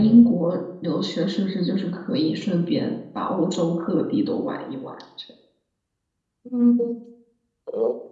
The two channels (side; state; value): both; identical; correlation 1.00